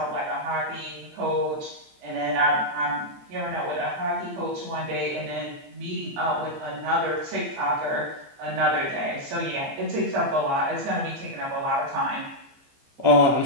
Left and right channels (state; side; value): late; left; 15 ms